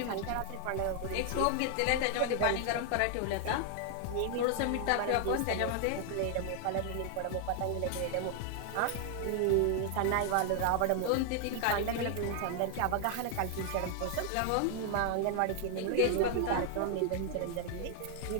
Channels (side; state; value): both; different; correlation 0.00